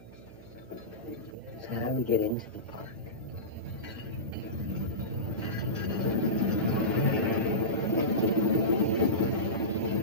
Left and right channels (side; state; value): right; noise; hum, 19 dB below the sound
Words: So how do we get into the park?